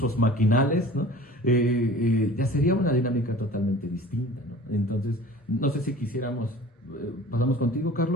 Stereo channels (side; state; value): both; normal; correlation 0.43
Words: maquinales, ¿no? Ya sería una dinámica totalmente distinta, ¿no? Entonces, no sé si quisiéramos, pasamos contigo,